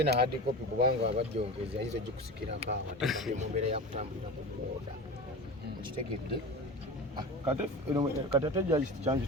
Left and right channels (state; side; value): normal; both; correlation 0.30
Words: na hard copy kubanga abajjongezi ayinza ogikusikirako awo ate mu mbeera yakutambulira ku booda kitegedde kati ate judge kyange